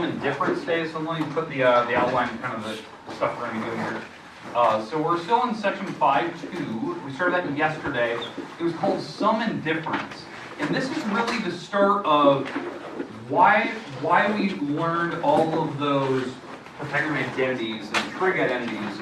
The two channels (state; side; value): identical; both; correlation 1.00